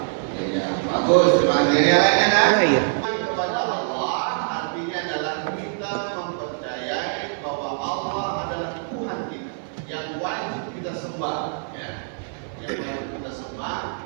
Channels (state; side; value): silent; left; 57 dB below the other